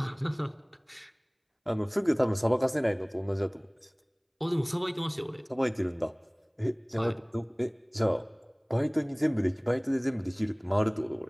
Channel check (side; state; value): both; identical; correlation 1.00